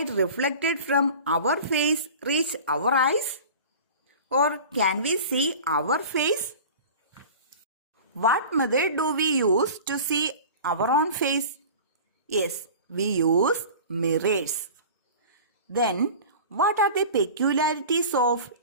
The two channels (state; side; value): inverted; both; correlation -0.38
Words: reflected from our face reach our eyes? Or can we see our face? What method do we use to see our own face? Yes, we use mirrors. Then, what are the peculiarities of